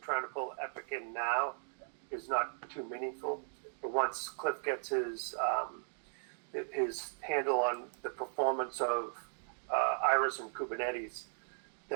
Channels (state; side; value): silent; left; digital silence